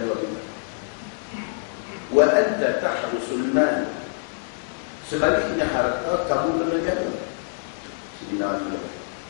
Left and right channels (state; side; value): silent; right; digital silence